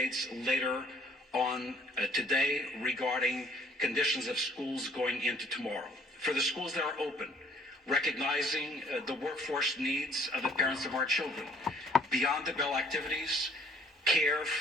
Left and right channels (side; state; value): both; normal; correlation 0.59